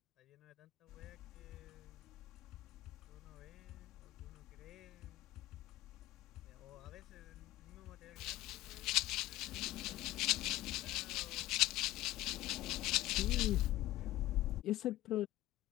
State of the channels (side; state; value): right; quieter; 16.3 dB